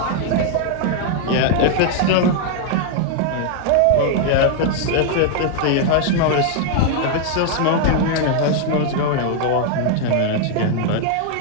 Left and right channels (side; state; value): both; different; correlation 0.00